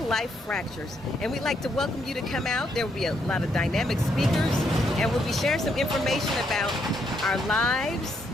Life Fractures, and we'd like to welcome you to come out. There will be a lot of dynamic speakers, and we'll be sharing some information about our lives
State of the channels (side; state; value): both; normal; correlation 0.75